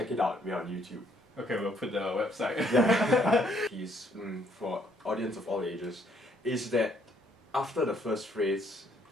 it out, we're on YouTube. Okay, we'll put the website. Yeah. Piece for audience of all ages is that after the first phrase,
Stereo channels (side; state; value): both; normal; correlation 0.67